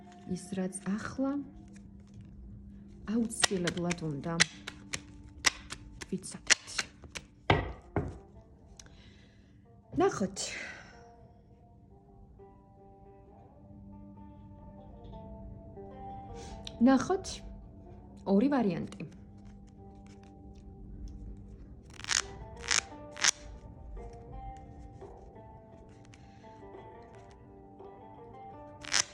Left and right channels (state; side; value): identical; both; correlation 1.00